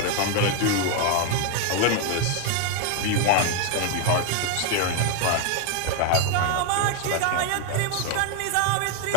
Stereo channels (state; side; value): different; both; correlation 0.00